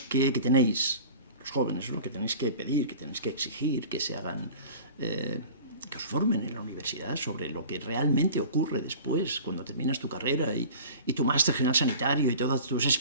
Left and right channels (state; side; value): inverted; both; correlation -0.41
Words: los jóvenes, ¿no? Que tenéis que pedir, que tenéis que exigir, que se hagan... que os formen en la universidad sobre lo que realmente ocurre después, cuando terminas tu carrera y tu máster general sanitario y todas tus